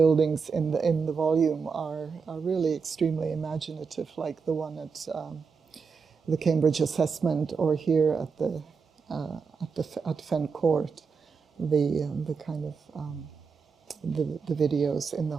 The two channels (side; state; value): left; quieter; 5.4 dB